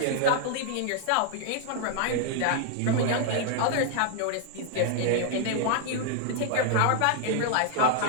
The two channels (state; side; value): different; both; correlation -0.01